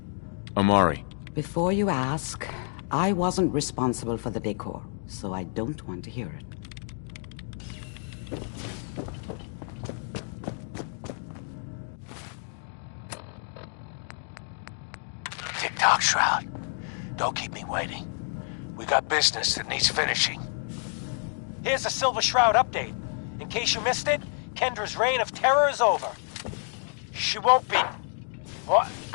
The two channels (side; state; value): right; silent; 59 dB below the other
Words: Amari. Before you ask, I wasn't responsible for the decor, so I don't want to hear it. Tick-tock, Shroud. Don't keep me waiting. We got business that needs finishing. Here's a Silver Shroud update. In case you missed it, Kendra's reign of terror is over. She won't be... What?